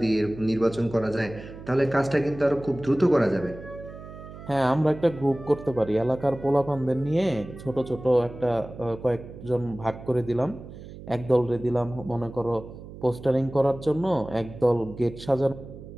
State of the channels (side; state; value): right; noise; hum, 15 dB below the sound